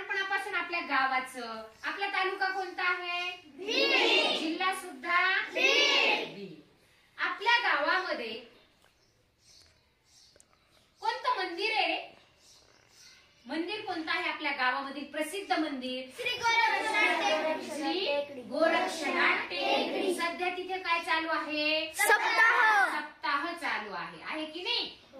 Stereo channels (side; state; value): both; identical; correlation 1.00